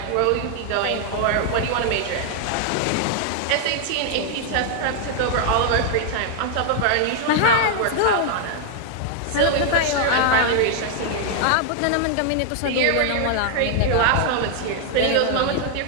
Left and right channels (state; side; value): different; both; correlation 0.00